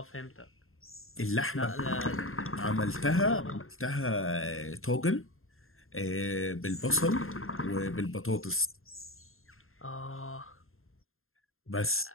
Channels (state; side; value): late; right; 0.61 ms